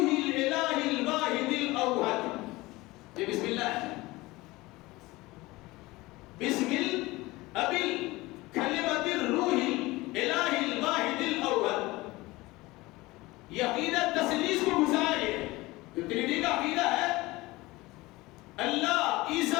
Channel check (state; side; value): quieter; right; 20.6 dB